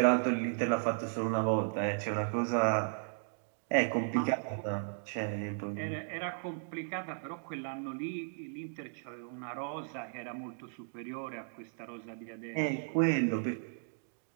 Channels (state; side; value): silent; left; digital silence